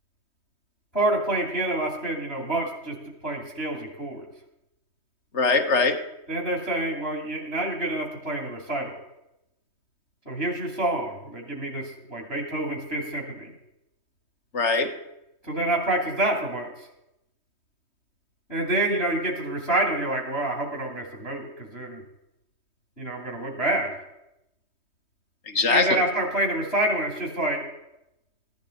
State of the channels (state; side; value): late; right; 3.2 ms